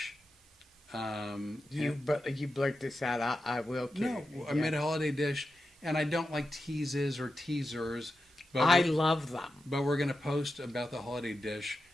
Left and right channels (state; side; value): normal; both; correlation 0.90